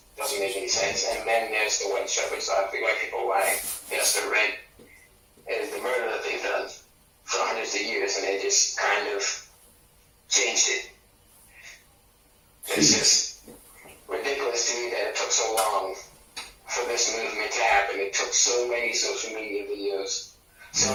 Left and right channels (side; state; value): both; identical; correlation 1.00